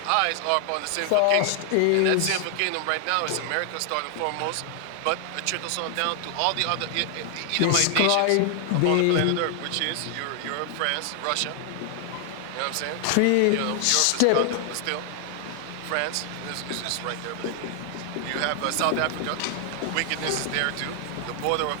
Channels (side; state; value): both; different; correlation 0.00